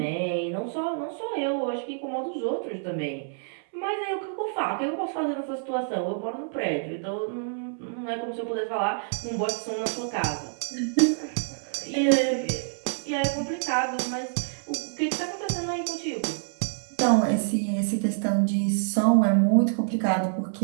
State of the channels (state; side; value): silent; left; 60 dB below the other